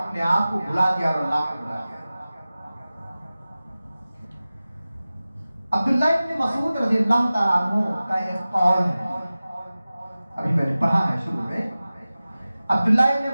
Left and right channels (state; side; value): inverted; both; correlation -0.97